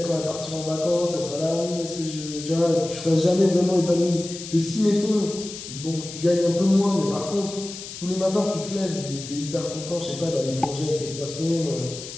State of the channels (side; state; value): left; noise; hiss, 11 dB below the sound